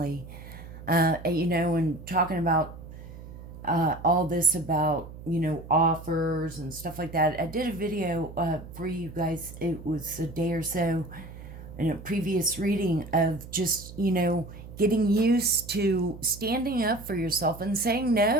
and talking about all this about, offers and stuff like that. I did a video for you guys. It was a day or so in a previous reading of just, getting used to standing up for yourself and saying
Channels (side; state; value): right; noise; hum, 14 dB below the sound